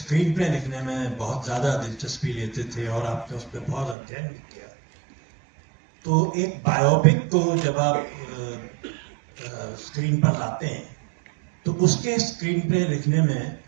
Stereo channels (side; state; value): left; drops out; at 4.0 s